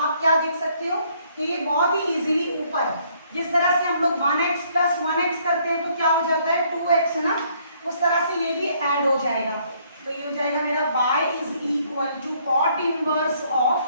क्या देख सकते हो कि ये बहुत ही इजीली ऊपर, जिस तरह से हम लोग 1x प्लस 1x करते हैं तो क्या हो जाता है 2x, है ना, उस तरह से ये भी ऐड हो जाएगा। तो ये हो जाएगा मेरा y is equal to cot inverse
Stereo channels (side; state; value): both; inverted; correlation -0.66